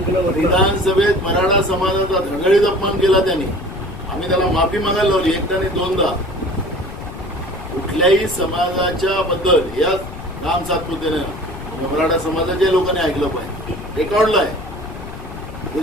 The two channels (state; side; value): noise; left; rumble, 12 dB below the sound